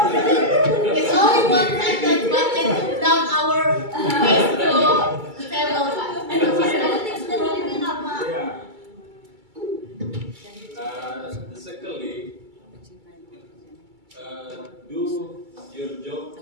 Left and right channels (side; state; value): left; late; 2.3 ms